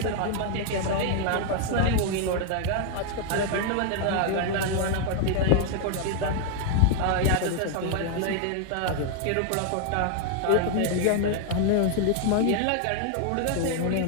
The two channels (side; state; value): both; different; correlation 0.00